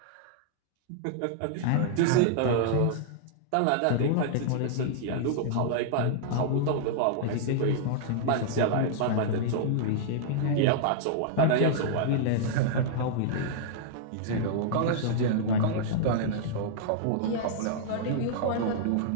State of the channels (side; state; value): both; different; correlation -0.02